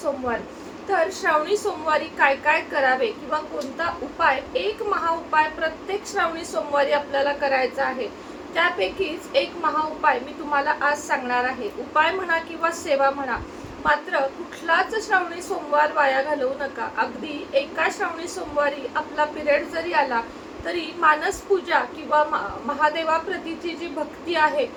तर श्रावणी सोमवारी काय काय करावे किंवा कोणता उपाय, एक महाउपाय प्रत्येक श्रावणी सोमवारी आपल्याला करायचा आहे. त्यापैकीच एक महाउपाय मी तुम्हाला आज सांगणार आहे. उपाय म्हणा किंवा सेवा म्हणा, मात्र कुठलाच श्रावणी सोमवार वाया घालवू नका. अगदी एका श्रावणी सोमवारी आपला पिरियड जरी आला तरी मानस पूजा किंवा महादेवाप्रतीची जी भक्ती आहे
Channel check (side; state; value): both; identical; correlation 1.00